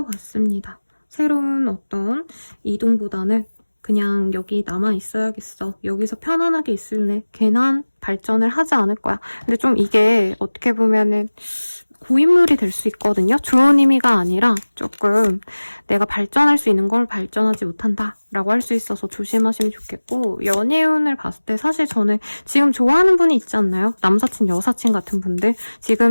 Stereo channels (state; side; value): inverted; both; correlation -1.00